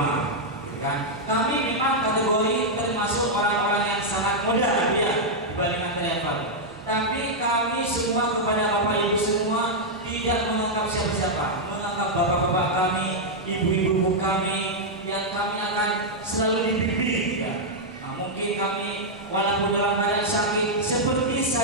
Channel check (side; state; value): right; noise; rumble, 27 dB below the sound